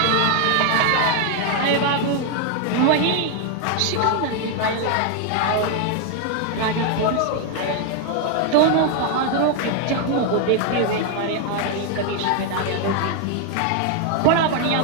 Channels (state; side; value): different; both; correlation 0.00